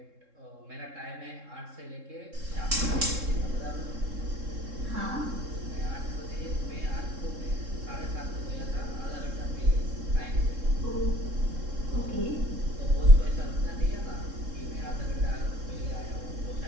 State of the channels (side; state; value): left; late; 3.7 ms